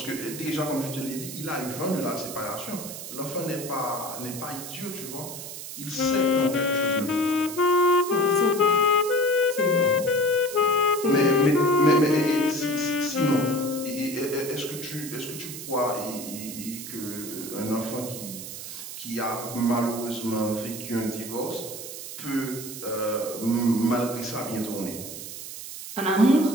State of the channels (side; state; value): right; noise; hiss, 10 dB below the sound